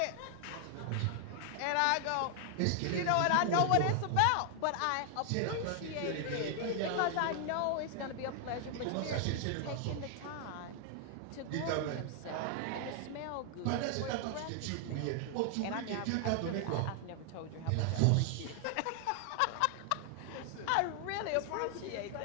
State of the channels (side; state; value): both; different; correlation 0.00